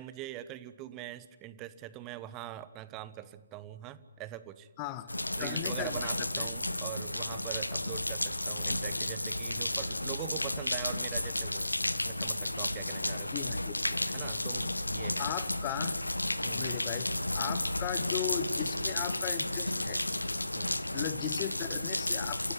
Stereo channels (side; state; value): both; inverted; correlation -0.81